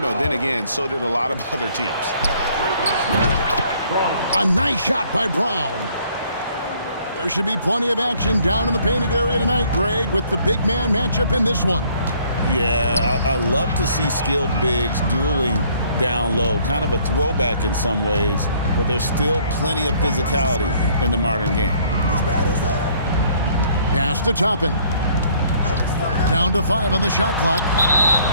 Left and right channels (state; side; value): inverted; both; correlation -0.61